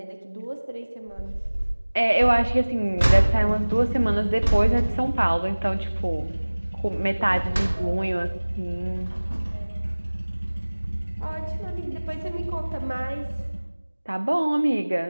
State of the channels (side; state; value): both; inverted; correlation -1.00